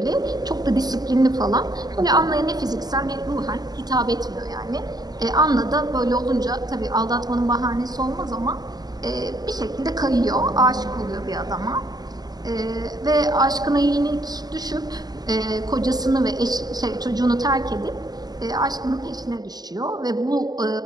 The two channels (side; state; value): left; late; 0.19 ms